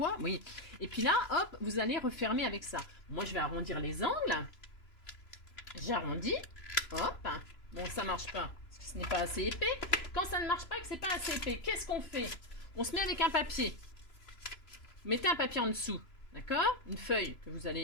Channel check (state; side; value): late; right; 3.0 ms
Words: oui. Et puis là, hop, vous allez refermer avec ça. Moi, je vais arrondir les angles. J'arrondis. Hop. Bon, ça marche pas, parce que ce n'est pas assez épais. Quand ça ne marche pas, que c'est pas assez épais, qu'est-ce qu'on fait? On se met avec un papier. Vous mettez un papier en dessous, d'accord? Une feuille que vous